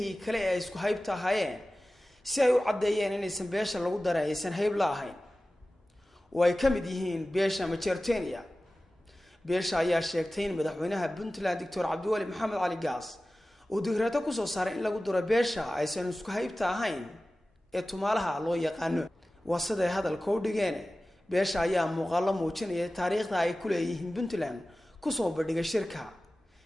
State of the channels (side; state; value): both; normal; correlation 0.96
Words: kale ee isku haybta ahaayeen si ay u cadeeyeen inaysan beesha lagu daraysan hayb la ahayn oo ay kamid yihiin beesha Majeerteeniya. beesha ayaa sheegtay in madaxweynaha Puntland Dr. Cabdiwali Maxamed Cali Gaas uu digraato ku soo saaray in lagu daro beesha aysan isku haybta ahayn ee tumaalaha loo yaqaano wasaday hadalka u dhigeen. beesha ayaa muuqaalo muujinaya taariikhda ay ku leeyihiin Puntland ku soo bandhigay shirka.